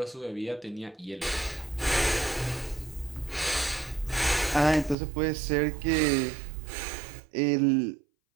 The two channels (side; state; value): left; drops out; at 5.0 s